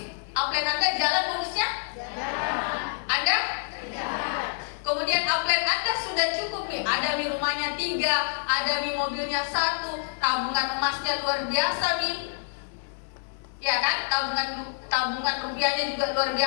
upline Anda jalan bonusnya? Anda? Kemudian upline Anda sudah cukup nih, ada nih rumahnya 3, ada nih mobilnya 1, tabungan emasnya luar biasa nih. Ya kan? Tabungan rupiahnya juga luar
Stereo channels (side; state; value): right; silent; digital silence